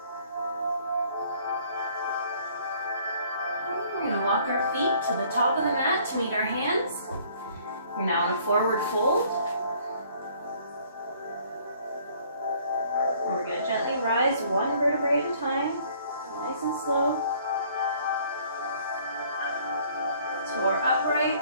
Walk our feet to the top of the mat to meet our hands. You're now in a forward fold. And we're going to gently rise one vertebrae at a time, nice and slow. Tore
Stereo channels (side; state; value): both; inverted; correlation -0.59